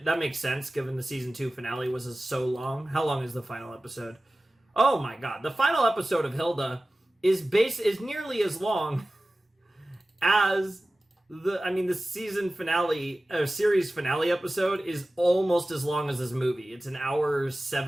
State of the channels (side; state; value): both; normal; correlation 0.96